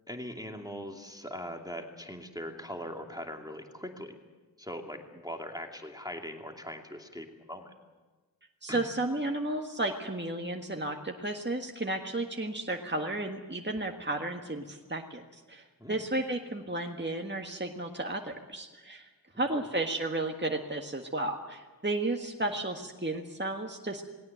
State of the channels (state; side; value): normal; both; correlation 0.16